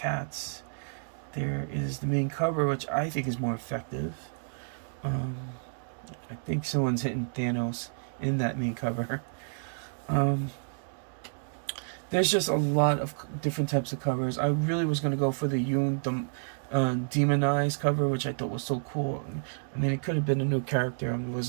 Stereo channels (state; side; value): silent; left; digital silence